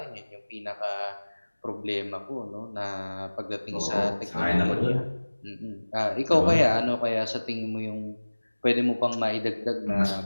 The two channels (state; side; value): inverted; both; correlation -1.00